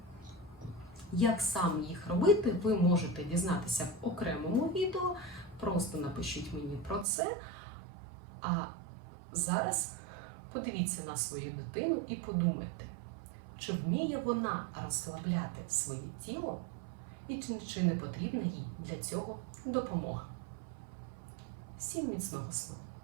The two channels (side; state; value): left; drops out; at 7.1 s